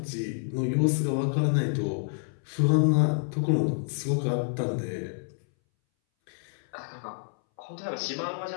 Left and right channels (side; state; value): right; silent; 59 dB below the other